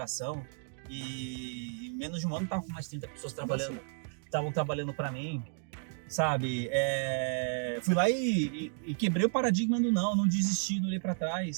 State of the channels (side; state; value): left; silent; 56 dB below the other